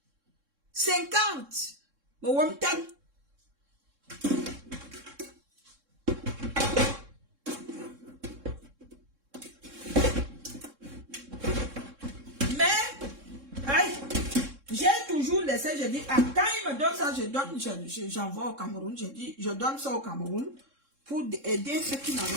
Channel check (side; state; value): left; late; 3.6 ms